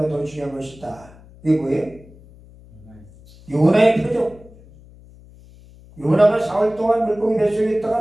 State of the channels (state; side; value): noise; left; hum, 23 dB below the sound